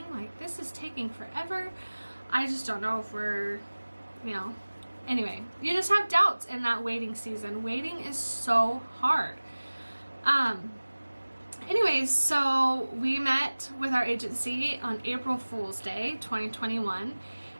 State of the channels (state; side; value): inverted; both; correlation -1.00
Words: Like, this is taking forever. I just don't know if we're, anyway, you just have doubts in that waiting season. Waiting is so hard. Anyways, so we met with our agency on April Fool's Day 2021,